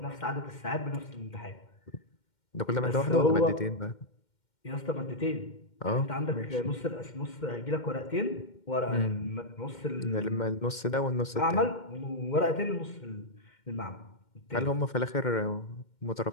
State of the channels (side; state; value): right; late; 2.1 ms